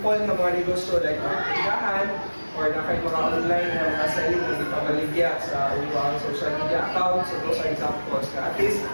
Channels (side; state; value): both; inverted; correlation -1.00